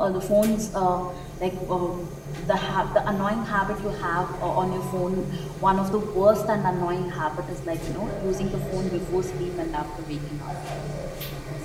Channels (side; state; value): both; identical; correlation 1.00